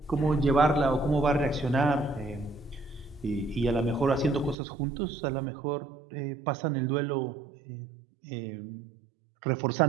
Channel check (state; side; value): drops out; left; at 4.5 s